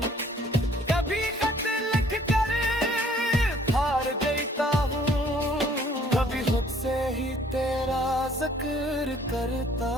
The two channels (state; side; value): normal; both; correlation 0.59